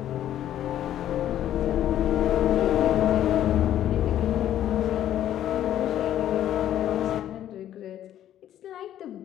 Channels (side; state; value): right; quieter; 11.6 dB